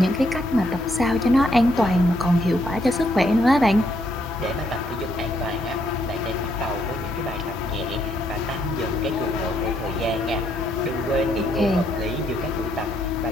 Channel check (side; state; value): both; normal; correlation 0.73